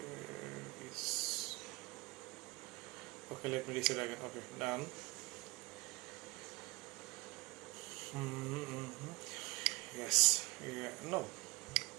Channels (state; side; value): quieter; left; 23.0 dB